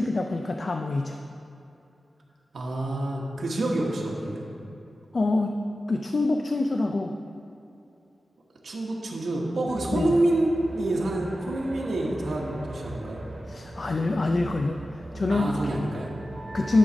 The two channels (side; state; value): both; normal; correlation 0.93